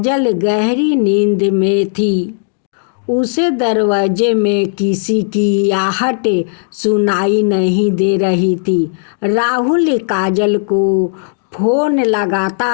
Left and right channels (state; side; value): silent; right; digital silence